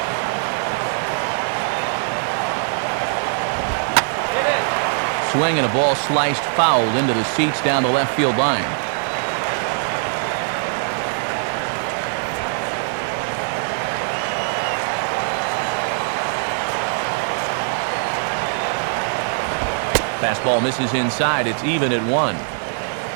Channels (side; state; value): left; silent; digital silence